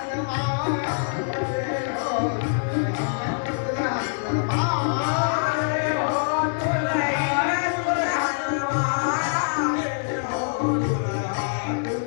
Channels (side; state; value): right; silent; digital silence